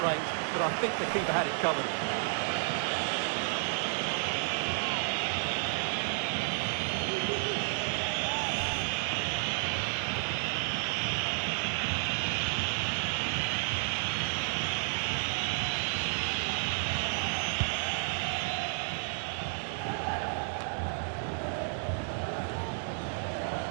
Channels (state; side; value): silent; left; digital silence